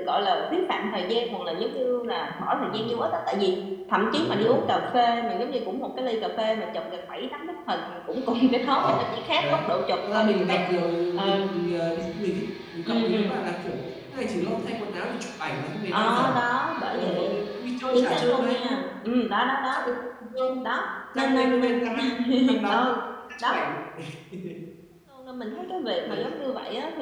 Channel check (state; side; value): identical; both; correlation 1.00